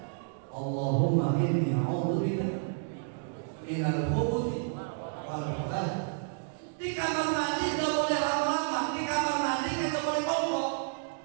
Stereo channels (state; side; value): silent; left; digital silence